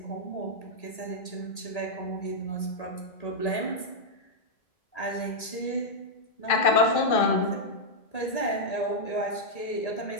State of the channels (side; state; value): right; late; 1.8 ms